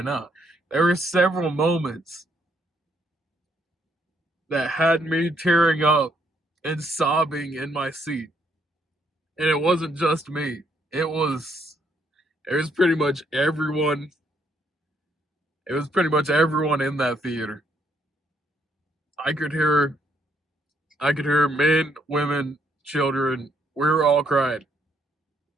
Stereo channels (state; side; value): normal; both; correlation 0.72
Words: now. There were several moments that had me tearing up and sobbing in my seat. And it wasn't just me. It was pretty much everyone. It was pretty much everyone in that theater. I could hear men, women, children. We were all crying.